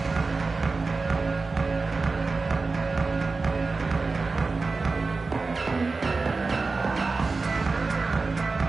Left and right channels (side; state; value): left; quieter; 4.0 dB